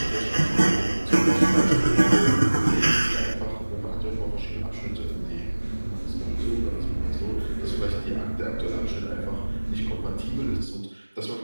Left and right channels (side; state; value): both; inverted; correlation -1.00